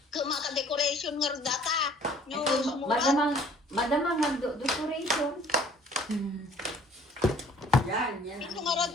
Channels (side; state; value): both; normal; correlation 0.54